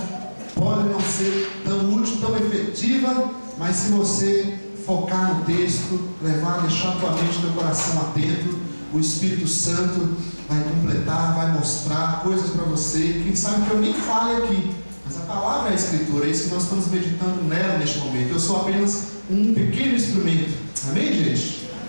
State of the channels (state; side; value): inverted; both; correlation -1.00